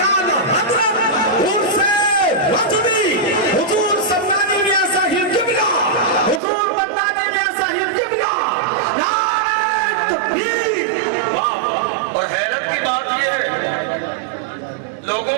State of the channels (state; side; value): drops out; left; at 6.4 s